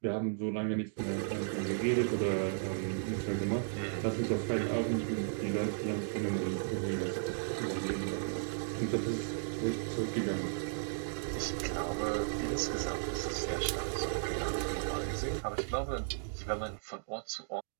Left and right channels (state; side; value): silent; left; digital silence